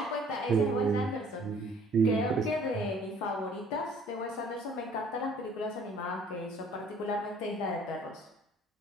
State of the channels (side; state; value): both; normal; correlation 0.55